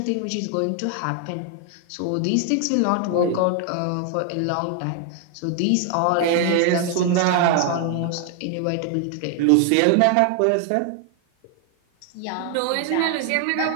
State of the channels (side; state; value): both; different; correlation 0.00